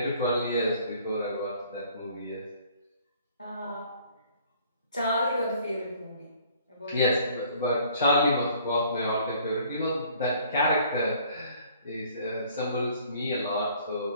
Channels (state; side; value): inverted; both; correlation -0.57